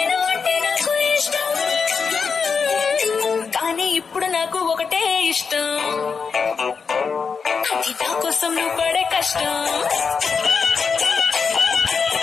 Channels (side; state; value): right; quieter; 5.5 dB